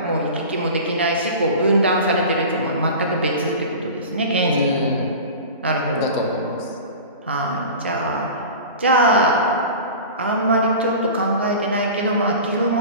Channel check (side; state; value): both; inverted; correlation -0.35